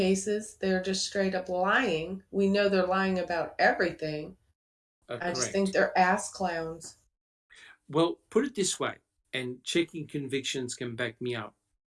they're just straight up lying. We know they're lying about everything. I just think they're ass clowns. Well, put it this way, and checking convictions can back me up.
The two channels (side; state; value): both; identical; correlation 1.00